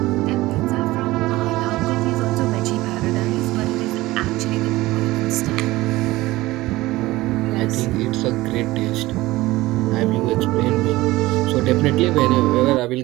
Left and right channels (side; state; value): left; quieter; 18.5 dB